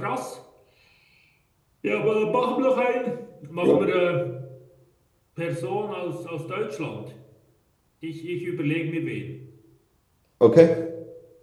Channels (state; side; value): identical; both; correlation 1.00